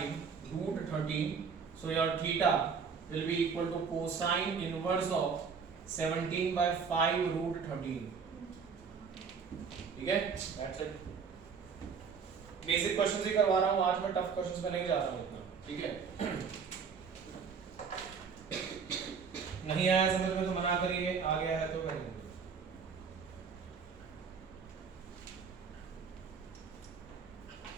root 13, so your theta will be equal to cosine inverse of 17 by 5 root 13, ठीक है। That's it। बेसिक क्वेश्चंस ही करवा रहा हूँ आज, मैं टफ क्वेश्चंस में नहीं जा रहा हूँ इतना, ठीक है। नहीं आया समझ में तो मना करिए, आ गया है तो करेंगे।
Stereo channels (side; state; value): left; quieter; 5.9 dB